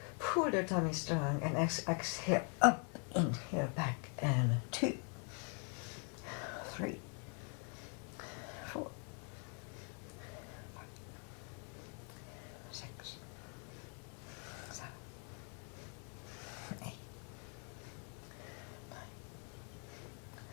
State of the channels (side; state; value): right; quieter; 39.9 dB